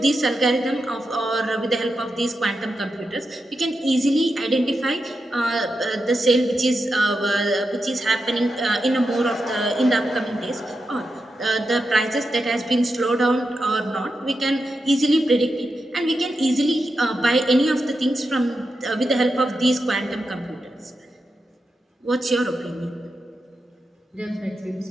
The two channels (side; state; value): both; normal; correlation 0.88